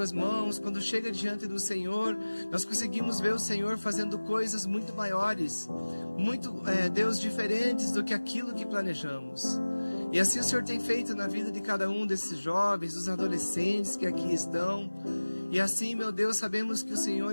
mãos, quando chega diante do Senhor, nós conseguimos ver o Senhor fazendo coisas muito maiores, muito, Deus, diferentes do que aquilo que planejamos. E assim o Senhor tem feito na vida de cada um desses jovens, dos adolescentes que aqui estão. E assim, meu Deus, sabemos que o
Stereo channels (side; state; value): both; inverted; correlation -1.00